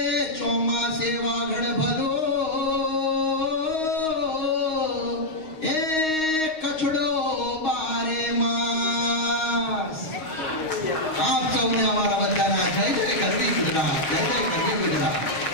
ચોમાસે વાગડ ભલો એ કચડો બારે માસ. આપ સૌને અમારા બધાના જય જય ગરવી ગુજરાત, જય જય ગરવી ગુજરાત.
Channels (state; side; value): late; right; 6.4 ms